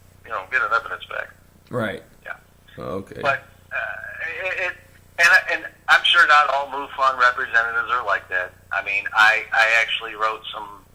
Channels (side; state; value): both; identical; correlation 1.00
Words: you know, get an evidence back. Right. Yeah. Okay. But and I'm sure not all MUFON representatives are like that. I mean, I actually wrote some